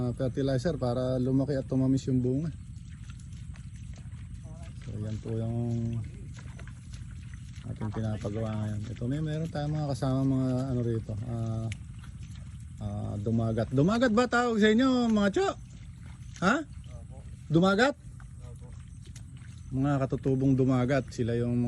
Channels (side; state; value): both; identical; correlation 1.00